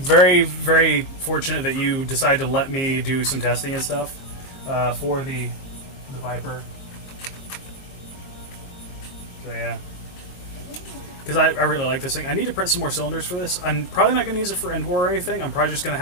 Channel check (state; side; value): late; right; 22 ms